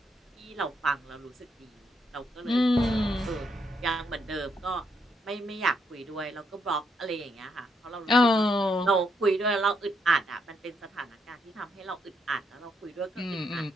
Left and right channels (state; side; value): normal; both; correlation 0.76